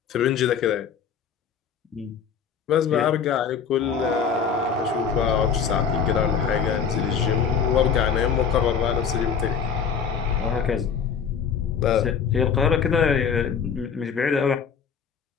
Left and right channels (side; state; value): right; quieter; 6.8 dB